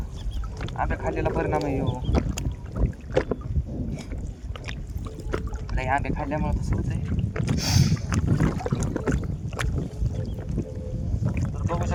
आंबे खाल्लेला परिणाम आहे हो. नाही आंबे खाल्ल्यामुळे तसं होतंय. तर बघू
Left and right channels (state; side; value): identical; both; correlation 1.00